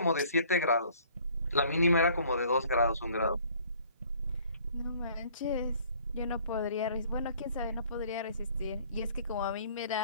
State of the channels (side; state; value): both; inverted; correlation -0.56